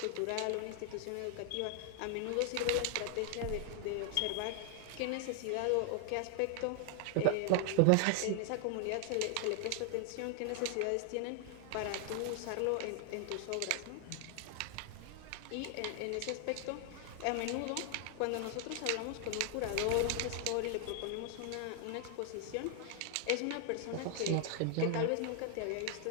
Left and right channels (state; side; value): different; both; correlation 0.00